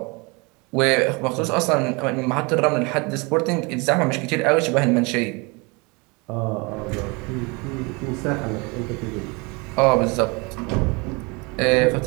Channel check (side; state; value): left; quieter; 28.5 dB